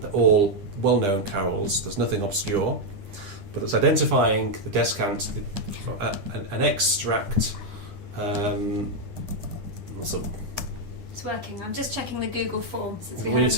They're all well-known carols. There's nothing obscure, but it's identifying the descant, an extract So It's working. I'm just checking the Google form since we when you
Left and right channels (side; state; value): left; late; 10 ms